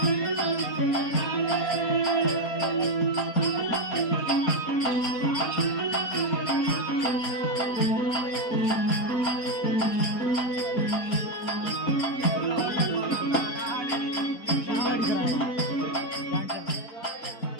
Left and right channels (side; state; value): right; late; 4.3 ms